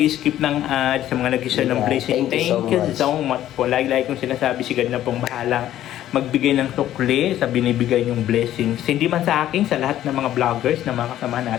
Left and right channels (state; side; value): quieter; right; 12.6 dB